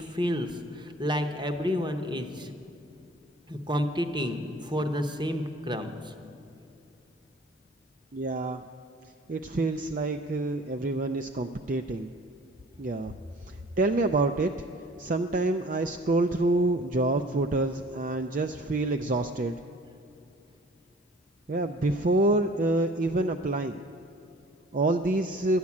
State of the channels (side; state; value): both; normal; correlation 0.49